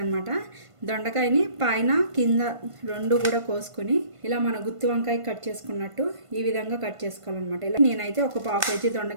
దొండకాయని పైన కింద రెండు కూడా కోసుకుని ఇలా మన గుత్తి వంకాయ కట్ చేసుకున్నట్టు ఈ విధంగా కట్ చేసుకోవాలన్నమాట. ఇలా నేనైతే ఒక 1/2 kg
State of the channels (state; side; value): late; left; 1.5 ms